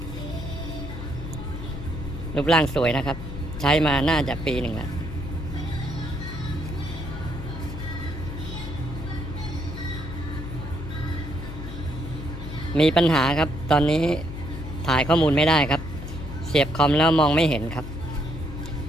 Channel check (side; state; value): left; noise; hum, 9 dB below the sound